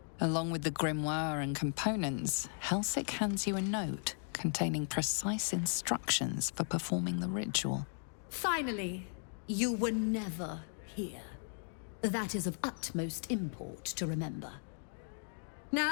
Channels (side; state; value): right; silent; 53 dB below the other